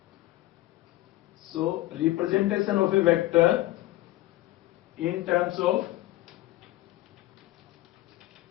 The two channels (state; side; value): quieter; right; 17.1 dB